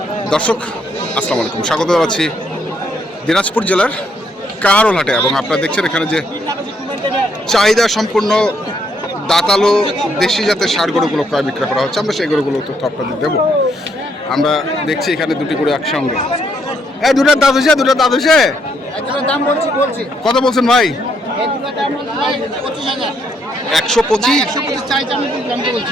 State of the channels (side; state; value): both; normal; correlation 0.72